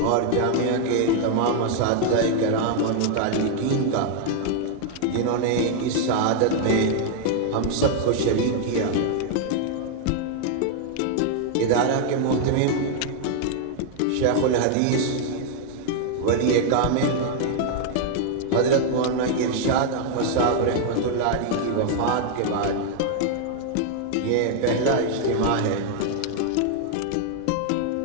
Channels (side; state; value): both; different; correlation 0.00